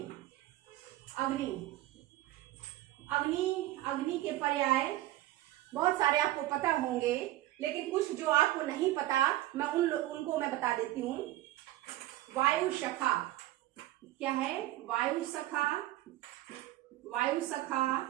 अग्नि, अग्नि, अग्नि के पर्याय बहुत सारे आपको पता होंगे, लेकिन कुछ जो आपको नहीं पता मैं उनको मैं बता देती हूँ। वायु सखा, क्या है, वायु सखा, वायु सखा।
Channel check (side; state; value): left; quieter; 15.9 dB